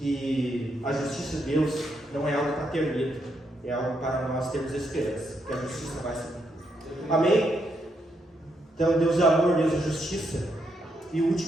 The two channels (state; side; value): normal; both; correlation 0.78